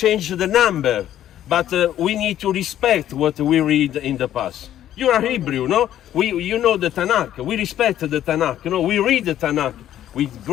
the number, but we need to respect what we read in the past. You are Hebrew, no? You know the Tanakh. We respect the Tanakh. You know, we read the Tanakh with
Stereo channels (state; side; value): quieter; right; 11.7 dB